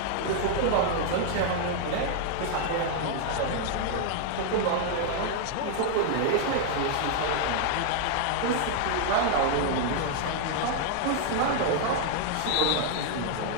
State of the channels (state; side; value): different; both; correlation 0.00